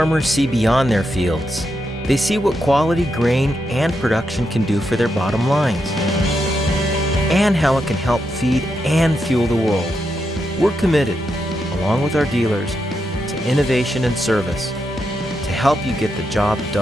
see beyond their fields. They see what quality grain and production can do for their bottom lines, and how it can help feed and fuel the world. We're committed, along with our dealers, to innovation and service to help you get the job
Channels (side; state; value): both; normal; correlation 0.84